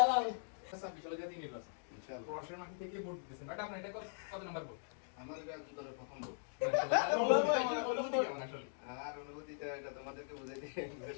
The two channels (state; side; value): silent; right; digital silence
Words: আচ্ছা বিশাল জাতি নির্বাচন। ইনশাআল্লাহ। প্রশাসন মাঠে থেকে ভোট দিতেছেন। বাট আপনার এটা কত নাম্বার ভোট? আমার এটা জীবনের প্রথম ভোট। অনুভূতি কেমন আসলে? আর অনুভূতিটা এটা তোমাদেরকে বুঝাইতে